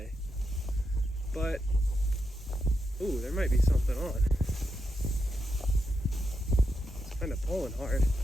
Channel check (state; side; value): normal; both; correlation 0.84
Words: But, ooh, there might be something on. It's kind of pulling hard.